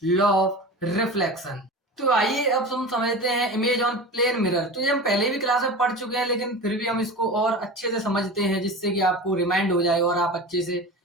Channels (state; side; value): normal; both; correlation 0.31